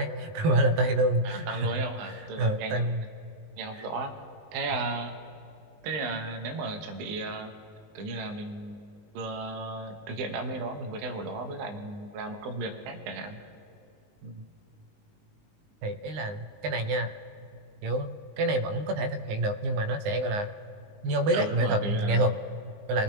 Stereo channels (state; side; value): late; left; 19 ms